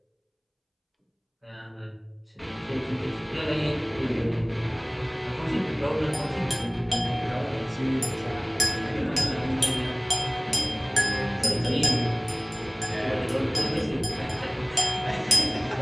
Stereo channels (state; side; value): identical; both; correlation 1.00